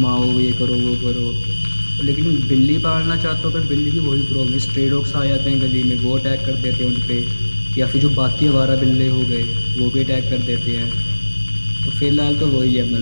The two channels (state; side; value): inverted; both; correlation -1.00